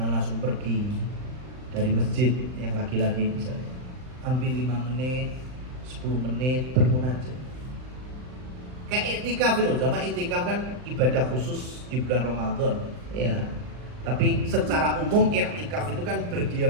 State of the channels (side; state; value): left; late; 39 ms